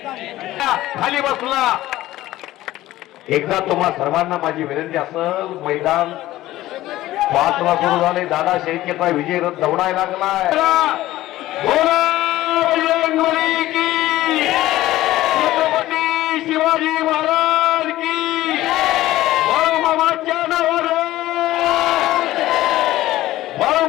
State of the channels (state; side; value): quieter; right; 15.8 dB